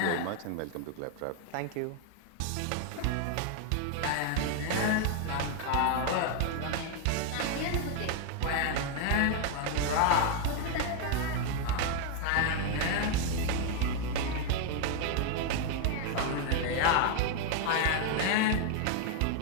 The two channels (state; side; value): different; both; correlation 0.00